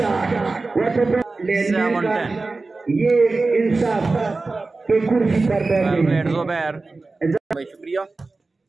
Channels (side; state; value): left; quieter; 3.6 dB